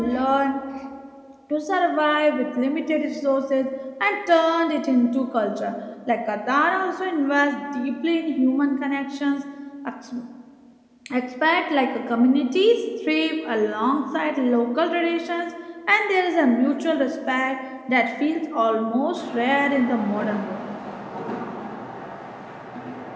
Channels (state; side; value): identical; both; correlation 1.00